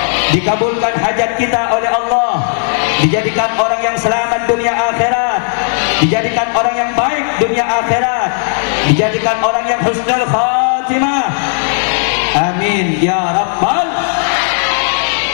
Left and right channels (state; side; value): silent; right; 61 dB below the other